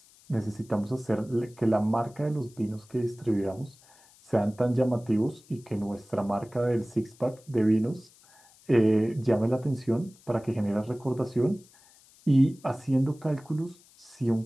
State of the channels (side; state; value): left; noise; hiss, 27 dB below the sound